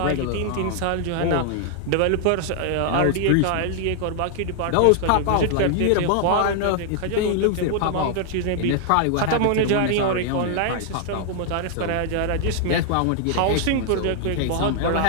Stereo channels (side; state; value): both; different; correlation 0.00